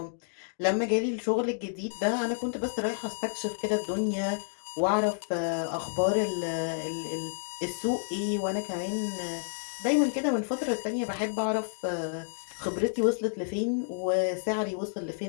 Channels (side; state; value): right; silent; digital silence